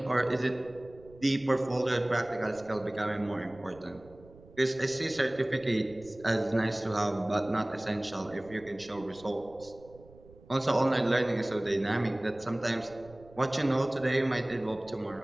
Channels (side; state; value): right; noise; rumble, 23 dB below the sound